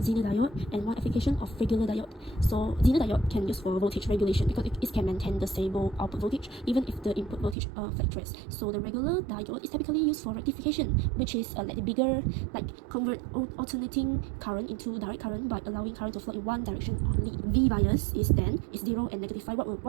Zener diode and one application of regular diode. So Zener diode can use for voltage regulation because it can maintain the stable output voltage even if the input voltage fluctuates. So the regular diode is typically used for rectification, which is like the bigger, like convert alternating current into direct current by allowing current to flow in one direction only. V bias is 10, is 0 and -5.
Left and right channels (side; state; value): left; drops out; at 7.6 s